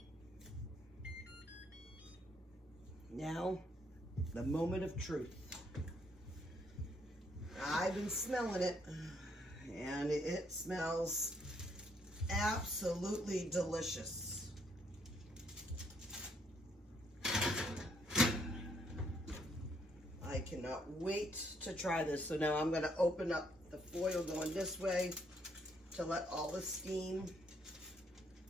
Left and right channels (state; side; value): normal; both; correlation 0.70